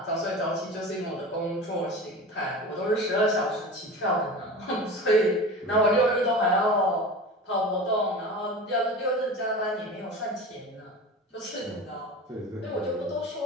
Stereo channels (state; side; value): normal; both; correlation 0.32